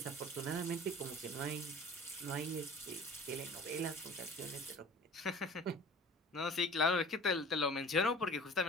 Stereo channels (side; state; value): both; normal; correlation 0.44